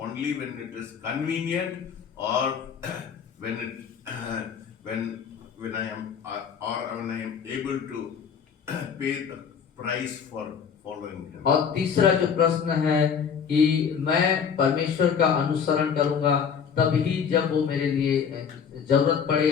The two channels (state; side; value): quieter; right; 7.0 dB